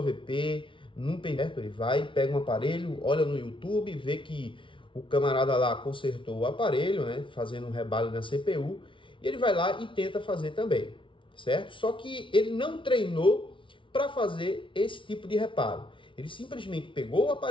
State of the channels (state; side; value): late; right; 0.25 ms